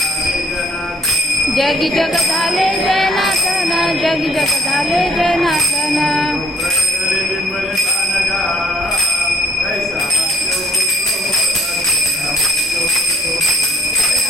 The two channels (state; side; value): normal; both; correlation 0.63